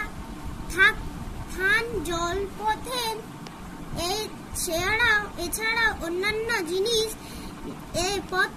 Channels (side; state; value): both; identical; correlation 1.00